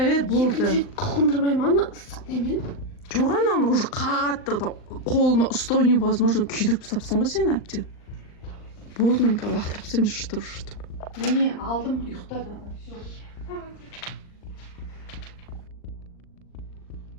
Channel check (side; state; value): right; late; 39 ms